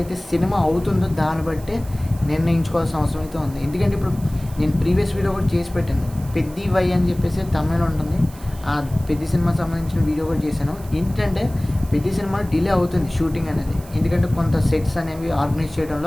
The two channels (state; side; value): noise; right; hiss, 21 dB below the sound